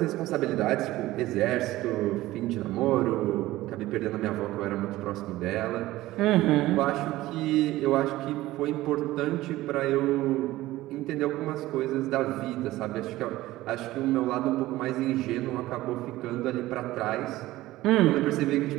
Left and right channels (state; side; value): quieter; left; 16.9 dB